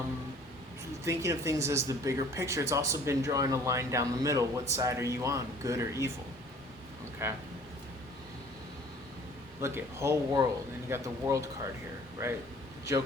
Thinking of things as the bigger picture. It's also been drawing a line down the middle. What side are you on? Good or evil? Okay. Look at whole world, and you got the world card here, right?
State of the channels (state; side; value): normal; both; correlation 0.52